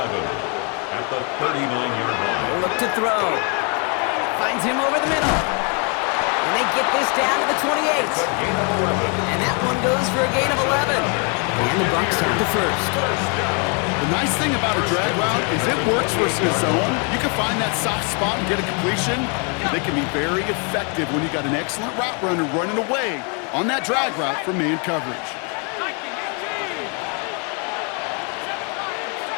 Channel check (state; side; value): quieter; right; 36.4 dB